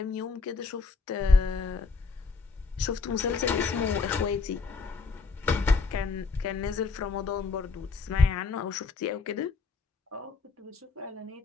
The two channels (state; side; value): quieter; right; 4.6 dB